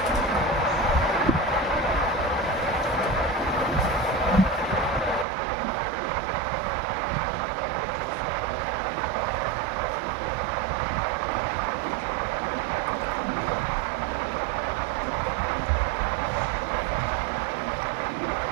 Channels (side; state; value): left; drops out; at 5.2 s